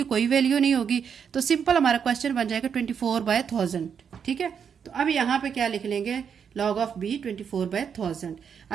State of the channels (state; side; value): quieter; left; 7.2 dB